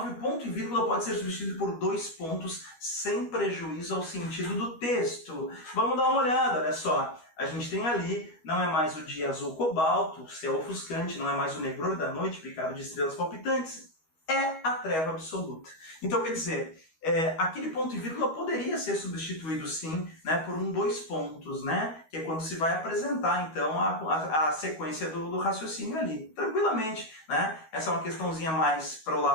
o ponto e vírgula pode ser substituído por 2 pontos sem prejuízo ao sentido do texto. Vamos dar uma olhada, olha só. A gente tem ali, não é mais o dia azul cobalto, o céu ofuscante, não é mais o negror da noite picado de estrelas palpitantes, é a treva absoluta. Então, quer dizer, aquele ponto e vírgula poderia ser substituído sim, né, por 2 pontos, né, que é quando se vai apresentar então a sequência do raciocínio ali, tranquilamente, né? Essa é uma questãozinha mais para o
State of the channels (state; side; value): late; right; 13 ms